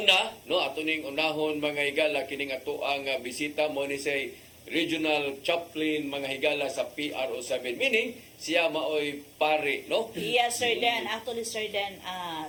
no, ato ning unahon mga higala kining ato ang bisita mo ni say Regional Chaplain mga higala sa PRO7, meaning siya maoy pare, no? Yes, Sir Dan. Actually, Sir Dan,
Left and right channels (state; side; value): identical; both; correlation 1.00